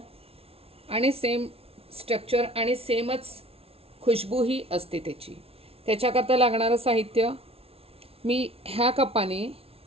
आणि सेम स्ट्रक्चर आणि सेमच खुशबूही असते त्याची. त्याच्याकरता लागणारं साहित्य मी ह्या कपाने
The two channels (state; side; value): late; left; 0.28 ms